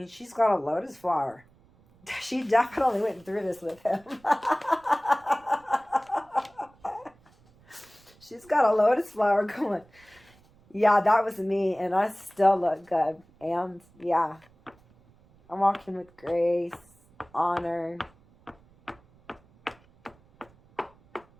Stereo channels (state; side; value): noise; right; rumble, 29 dB below the sound